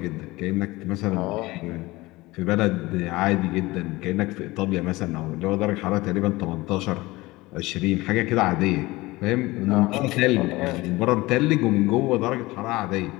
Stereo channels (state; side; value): quieter; right; 20.5 dB